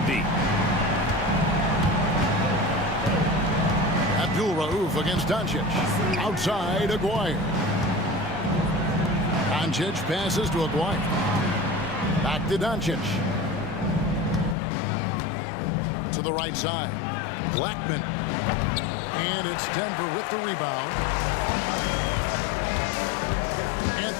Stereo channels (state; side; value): drops out; right; at 14.6 s